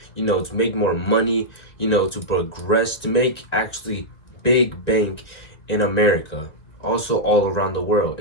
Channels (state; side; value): late; right; 2.1 ms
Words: to make more money, to progress, to make actually big bank in America. Also all around the world.